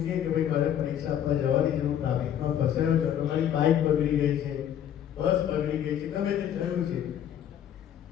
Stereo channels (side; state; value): right; quieter; 10.0 dB